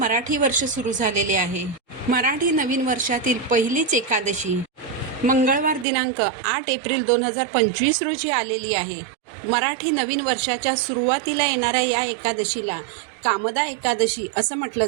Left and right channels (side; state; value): left; drops out; at 5.9 s